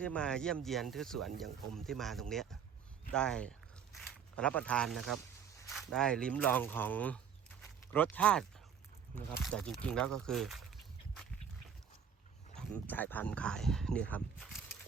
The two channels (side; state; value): left; quieter; 7.5 dB